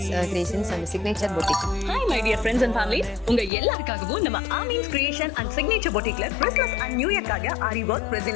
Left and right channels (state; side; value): drops out; right; at 3.5 s